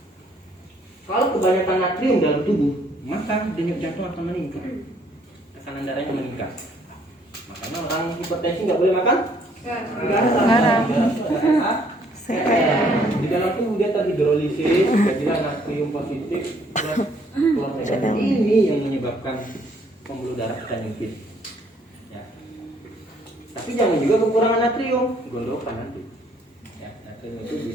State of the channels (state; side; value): normal; both; correlation 0.64